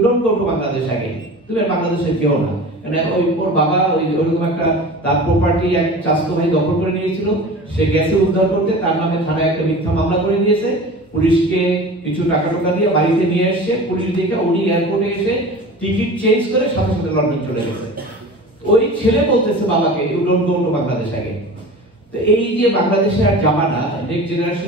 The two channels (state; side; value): normal; both; correlation 0.36